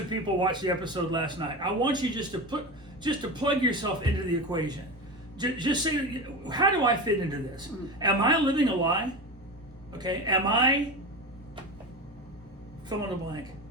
people watch the episode last night. I want you just to plug yourself into the equation. Just say, how do I fit into this? Am I living a lie? Okay? Am I fill in the blank?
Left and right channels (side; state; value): both; normal; correlation 0.25